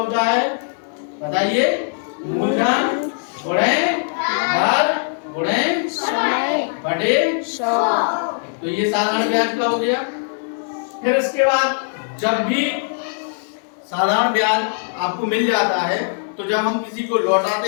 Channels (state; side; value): silent; right; digital silence